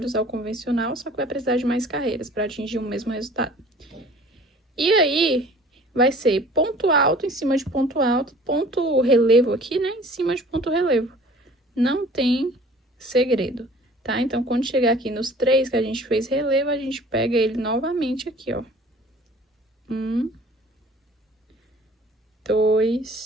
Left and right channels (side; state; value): both; normal; correlation 0.49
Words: usar o convencional, só que vai precisar de mais carreiras para atingir o mesmo resultado. E aí, vai ser ponto alto em cima de ponto alto, ponto relevo aqui, né, em cima de ponto relevo. Não tem segredo, tá? Então, quando chegar aqui nos 3 que a gente fez relevo, a gente pega ele novamente aqui, ó. 1,